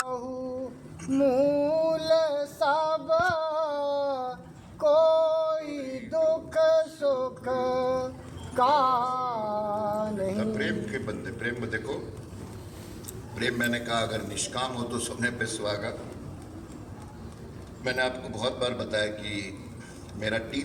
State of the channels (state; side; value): identical; both; correlation 1.00